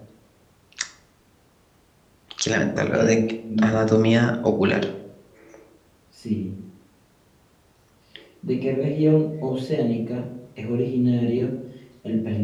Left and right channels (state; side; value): identical; both; correlation 1.00